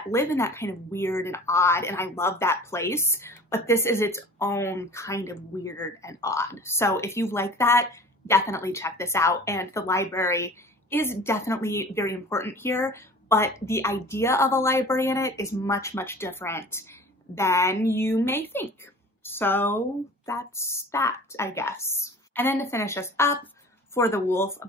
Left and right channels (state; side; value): normal; both; correlation 0.43